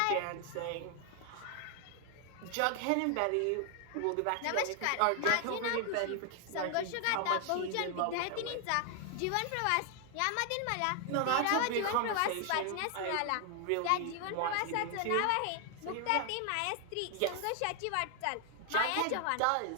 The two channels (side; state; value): both; different; correlation 0.00